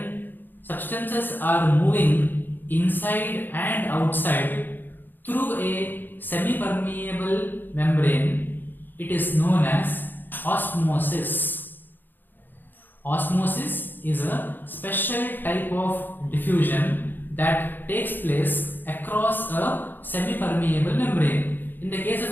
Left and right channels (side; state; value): right; late; 0.091 ms